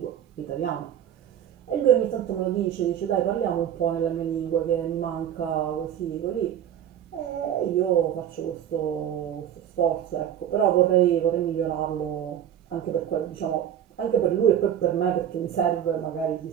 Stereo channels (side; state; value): left; quieter; 10.1 dB